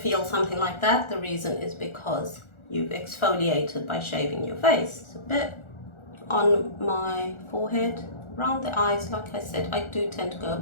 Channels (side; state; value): right; late; 1.4 ms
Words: something like that, the reason is because you've exfoliated by shaving your face. It's a bit on my forehead, around the eyes. Like I said, I do tend to go a